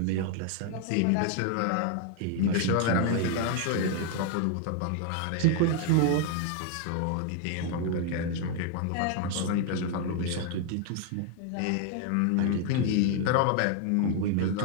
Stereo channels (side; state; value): both; different; correlation 0.00